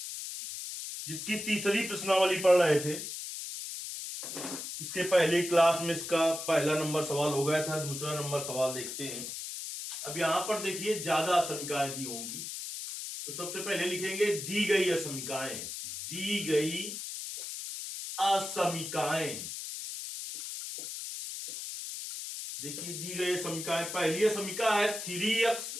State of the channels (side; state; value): left; noise; hiss, 7 dB below the sound